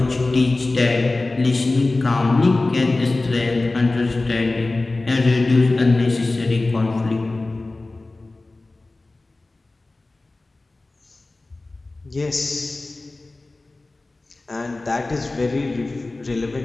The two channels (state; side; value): quieter; right; 3.1 dB